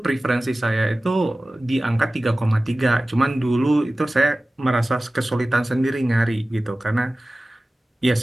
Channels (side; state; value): both; normal; correlation 0.97